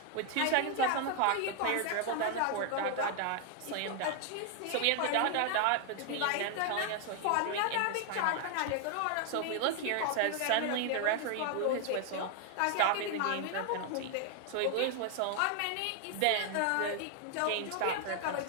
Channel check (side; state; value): both; different; correlation 0.00